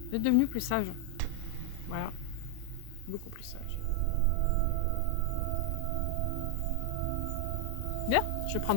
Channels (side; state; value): both; different; correlation 0.00